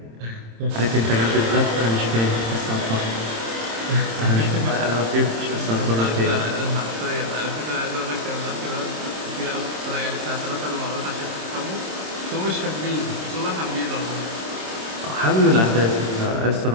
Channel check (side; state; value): left; late; 26 ms